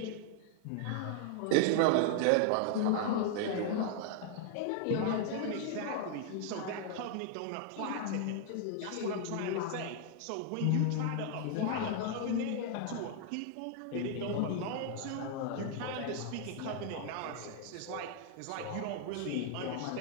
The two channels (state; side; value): different; both; correlation 0.00